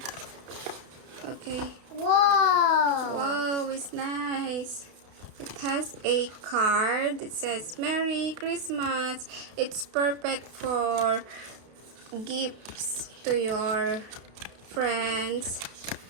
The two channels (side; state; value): left; late; 32 ms